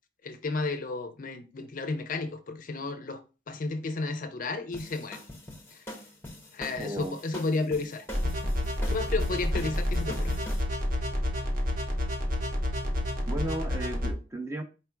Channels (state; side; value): normal; both; correlation 0.71